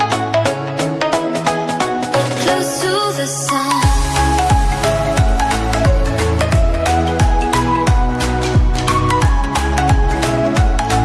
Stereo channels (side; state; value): both; identical; correlation 1.00